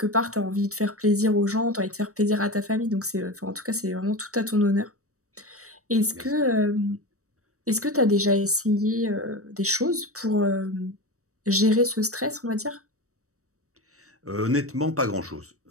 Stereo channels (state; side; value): late; left; 0.65 ms